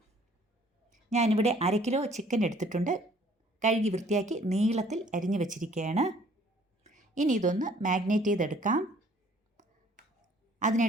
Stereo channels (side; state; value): both; normal; correlation 0.58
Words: ഞാനിവിടെ 1/2 കിലോ ചിക്കൻ എടുത്തിട്ടുണ്ട്. കഴുകി വൃത്തിയാക്കി നീളത്തിൽ അരിഞ്ഞു വെച്ചിരിക്കുകയാണ്. ഇനി ഇതൊന്ന് മാഗ്നേറ്റ് ചെയ്തെടുക്കാം.